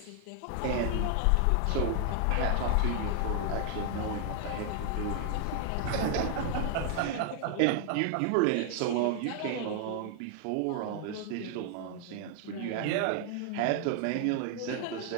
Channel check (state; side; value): different; both; correlation 0.00